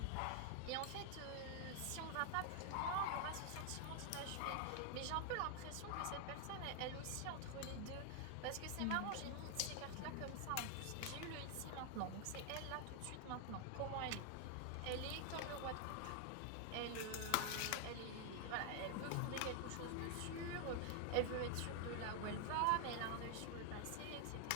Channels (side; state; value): both; different; correlation 0.00